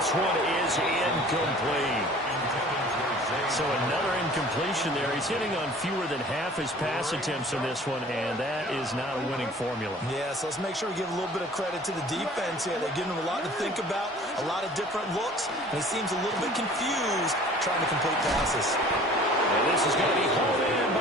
one is incomplete. So another incompletion there. He's hitting on fewer than half his pass attempts in this one, and that is not a winning formula. Yeah, so let's make sure we give a little bit of credit to the defense here. They're giving him a lot to think about, a lot of different looks, and he seems a little bit confused trying to complete passes. And this is going to be hauled in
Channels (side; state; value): both; normal; correlation 0.48